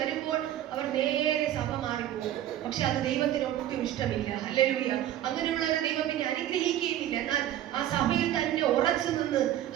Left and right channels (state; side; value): quieter; left; 12.3 dB